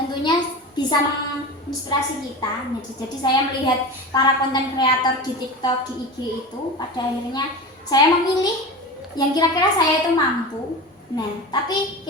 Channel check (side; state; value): both; normal; correlation 0.29